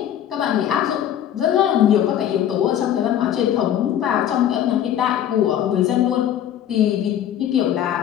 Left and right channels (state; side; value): quieter; right; 10.5 dB